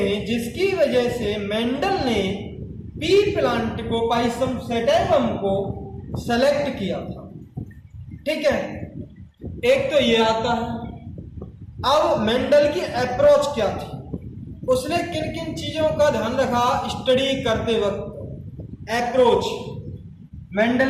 जिसकी वजह से मेंडल ने पी प्लांट को, पाइसम सेटेबम को सेलेक्ट किया था। ठीक है, एक तो ये आता है। अब मेंडल की अप्रोच क्या थी, उसने किन किन चीजों का ध्यान रखा स्टडी करते वक्त। अप्रोच,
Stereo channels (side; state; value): both; identical; correlation 1.00